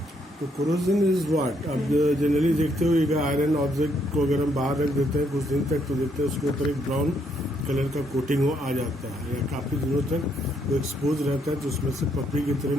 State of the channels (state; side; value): normal; both; correlation 0.73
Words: तो corrosion is what? अब generally देखते हो एक iron object को अगर हम बाहर रख देते हैं कुछ दिन तक तो देखते हैं उसके ऊपर एक ब्राउन कलर का कोटिंग हो आ जाता है या काफ़ी दिनों तक वो एक्सपोज रहता है तो उसमें से पपड़ी की तरह